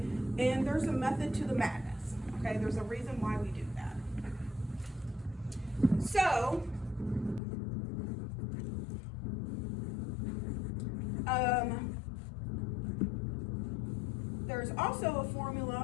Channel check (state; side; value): drops out; right; at 7.4 s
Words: And there's a method to the madness, okay? There's a reason why we do that. So, there's also a